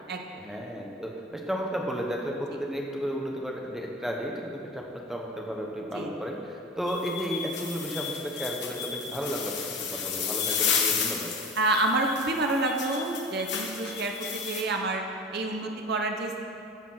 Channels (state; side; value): normal; both; correlation 0.36